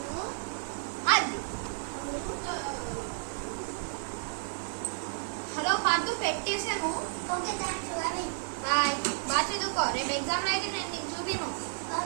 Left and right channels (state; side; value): silent; left; 57 dB below the other